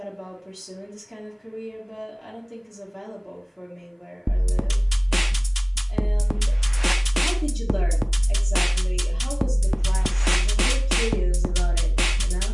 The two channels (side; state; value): both; identical; correlation 1.00